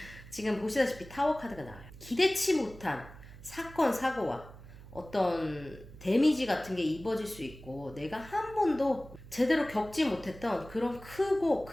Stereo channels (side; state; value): right; noise; hum, 17 dB below the sound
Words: 지금 보시다시피 타워 카드가 나와요. 기대치 못한 사건 사고와 어떤 데미지 같은 게 입어질 수 있고 내가 한 번도 제대로 겪지 못했던 그런 크고